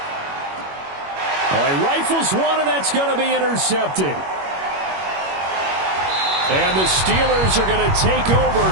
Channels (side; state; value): left; late; 21 ms